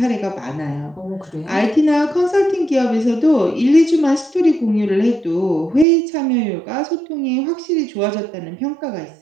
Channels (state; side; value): drops out; left; at 5.9 s